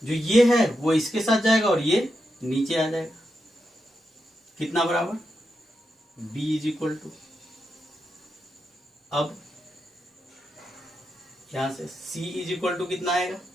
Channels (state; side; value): normal; both; correlation 0.86